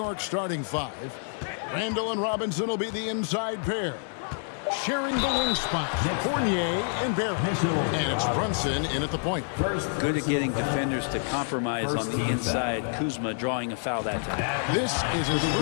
starting five. Randall and Robinson will be the inside pair. Sharing the wing spots, Fournier and Barrett. And it's Brunson in at the point. Good at getting defenders to compromise on the inside. Kuzma drawing a foul that time. This is his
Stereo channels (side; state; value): right; silent; 60 dB below the other